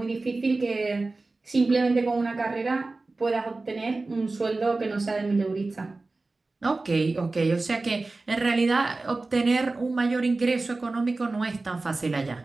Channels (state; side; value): quieter; left; 3.4 dB